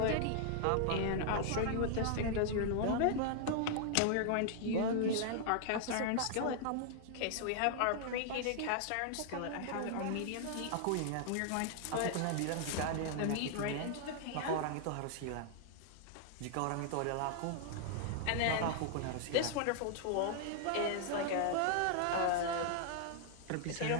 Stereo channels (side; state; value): both; different; correlation 0.00